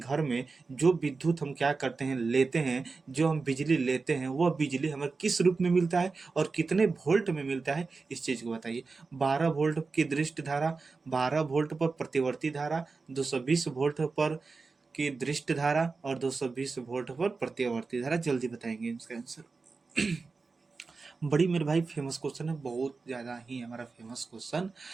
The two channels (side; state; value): left; quieter; 4.2 dB